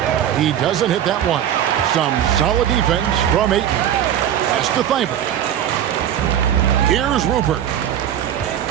He doesn't hit that one. Some solid defense from Ayton. Pass to Thibault. Here's Rupert.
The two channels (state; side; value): quieter; left; 10.4 dB